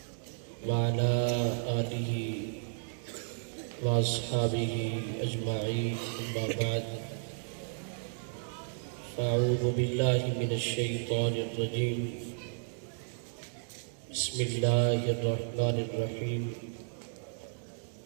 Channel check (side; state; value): left; silent; digital silence